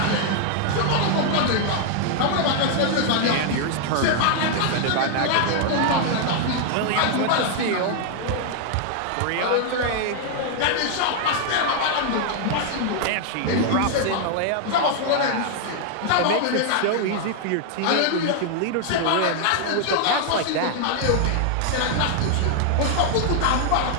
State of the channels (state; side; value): different; both; correlation 0.00